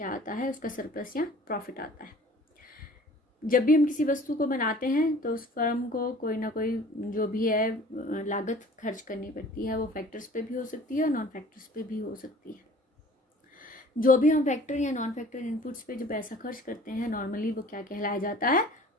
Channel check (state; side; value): normal; both; correlation 0.48